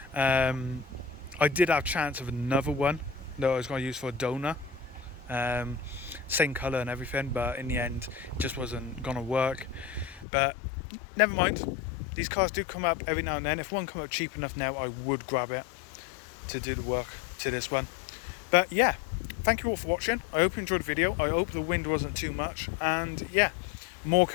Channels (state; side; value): drops out; right; at 10.2 s